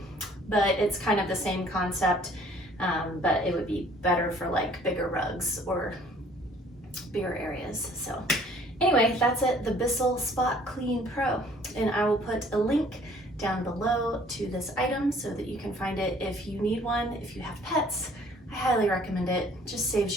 but it's kind of the same concept, but it would be better for like bigger rugs or bigger areas. So anyway, that's it, the Bissell Spot Clean Pro, and I will put a link down below to this item so that you can find it if you need one. If you have pets, I highly recommend it. Just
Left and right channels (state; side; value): normal; both; correlation 0.56